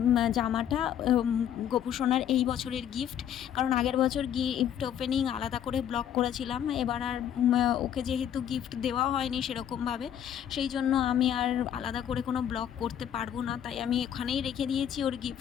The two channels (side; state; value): right; quieter; 9.8 dB